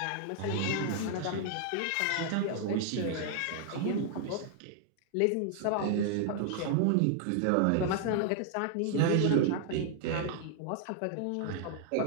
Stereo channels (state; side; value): different; both; correlation 0.00